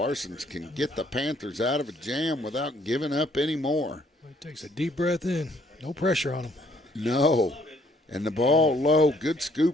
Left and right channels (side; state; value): both; normal; correlation 0.65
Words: can get the Panthers out of a jam without giving up any more. He takes a deep breath in. No pressure on him. No. And the ball low. Good